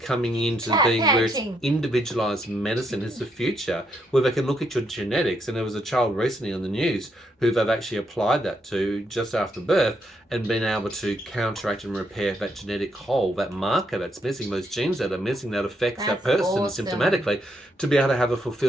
into being where it's individualized medicine is the future, where they can look at your genetics. And there was a child recently on the news who they've actually applied that to just after birth and been able to counteract and repair that genetic hole, that marker that's missing, those genes that are missing that affects that person symptomatically, to be able to have a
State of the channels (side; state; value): both; normal; correlation 0.76